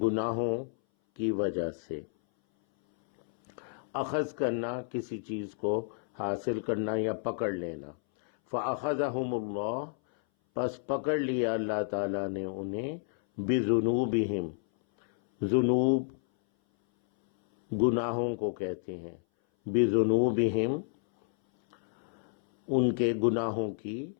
کی وجہ سے۔ اخذ کرنا، کسی چیز کو حاصل کرنا یا پکڑ لینا۔ فَأَخَذَهُمُ اللَّهُ، پس پکڑ لیا اللہ تعالیٰ نے انہیں، بِذُنُوبِهِمْ، ذنوب گناہوں کو کہتے ہیں، بِذُنُوبِهِمْ ان کے گناہوں کی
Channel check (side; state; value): right; silent; 58 dB below the other